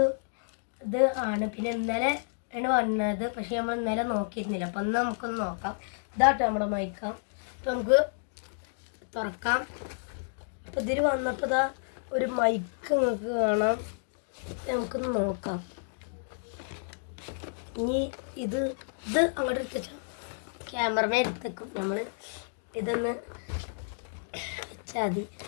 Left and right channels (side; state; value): right; silent; digital silence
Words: ആണ്. പിന്നെ ഇന്നലെ ആണ് വന്നത്, പക്ഷേ നമ്മൾ ഇന്നലെ നോക്കിയിരുന്നില്ല. അപ്പോൾ ഒന്ന് നമുക്കൊന്ന് നോക്കാം. ഇതാട്ടോ നമ്മുടെ മൈക്ക. അപ്പോൾ നമുക്ക് തുറക്കാം. അപ്പോൾ ഇതിൽ വന്നപ്പോൾ ഇതാ ഒരു മൈക്ക് നിങ്ങൾക്ക് കാണാം. നമുക്കൊന്ന് നോക്കാം. ഇനി ഇത് അങ്ങോട്ട് എടുത്തുവെച്ചാൽ ക്യാമറമേ എടുത്തേക്കും. നമ്മൾ ഇതൊന്ന് വെച്ചാൽ മതി.